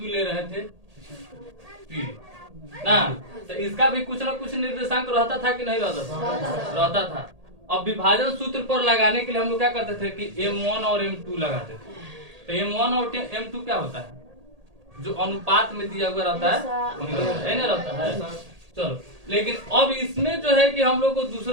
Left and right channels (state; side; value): late; left; 1.8 ms